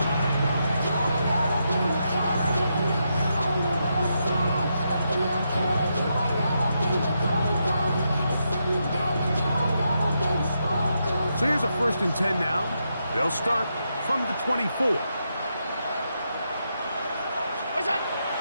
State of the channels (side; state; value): both; inverted; correlation -0.82